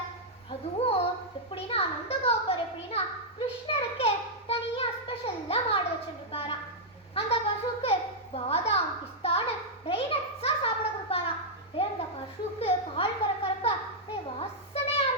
அதுவும் எப்படின்னா நந்தகோபர் எப்படின்னா கிருஷ்ணருக்கு தனியா ஸ்பெஷல்லா மாடு வச்சிருப்பாராம். அந்த பசுக்கு பாதாம் பிஸ்தான்னு ட்ரை நட்ஸா சாப்பிட கொடுப்பாராம். அந்த பசுக்கு பால் கறக்கறப்ப வாசனையா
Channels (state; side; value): normal; both; correlation -0.06